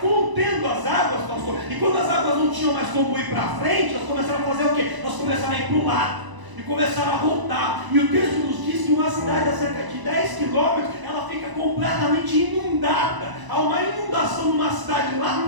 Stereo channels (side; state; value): left; late; 1.0 ms